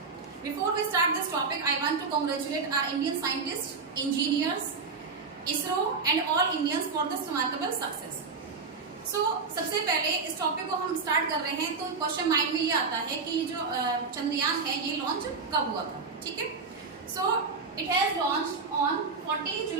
Before we start this topic I want to congratulate our Indian scientist, engineers, ISRO and all Indians for this remarkable success. So सबसे पहले इस topic को हम start कर रहे हैं तो क्वेश्चन माइंड में ये आता है कि जो चंद्रयान है ये लॉन्च कब हुआ था। ठीक है, so it has launch on 14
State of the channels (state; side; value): quieter; left; 4.7 dB